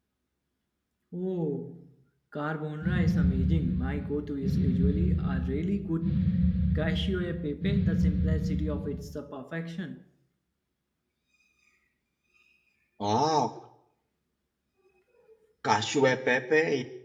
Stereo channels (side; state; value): both; identical; correlation 1.00